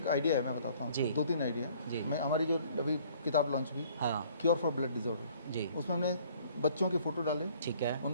आइडिया है, मैं बताता हूँ। जी। 2-3 आइडिया जी। मैं हमारी जो अभी किताब लॉन्च हुई, हाँ क्योर फॉर ब्लड डिसऑर्डर, जी उसमें हमने बच्चों के फ़ोटो डाले, ठीक है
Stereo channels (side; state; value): both; inverted; correlation -0.57